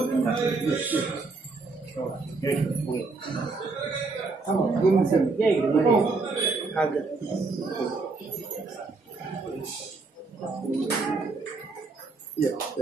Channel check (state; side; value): quieter; left; 3.9 dB